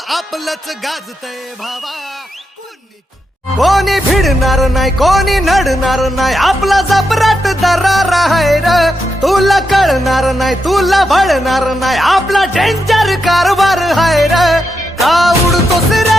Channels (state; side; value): normal; both; correlation 0.85